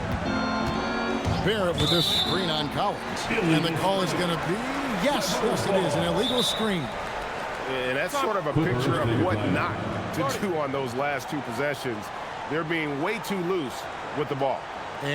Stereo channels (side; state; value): both; identical; correlation 1.00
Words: Barrett with this screen on Collins. And the call is going to be, yes, it is, an illegal screen. And that's sort of a picture of what not to do on those last 2 possessions. They're being way too loose with the ball.